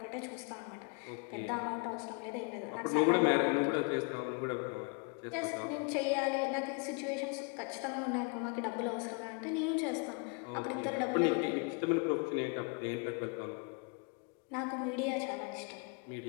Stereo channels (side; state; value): right; quieter; 34.4 dB